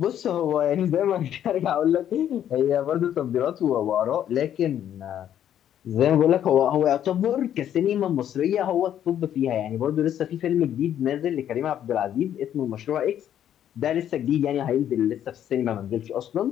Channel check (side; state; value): right; quieter; 10.4 dB